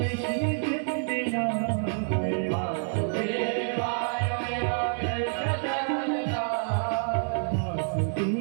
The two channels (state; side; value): silent; left; digital silence